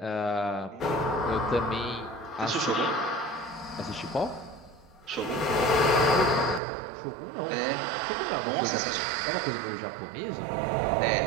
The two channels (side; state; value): left; drops out; at 6.6 s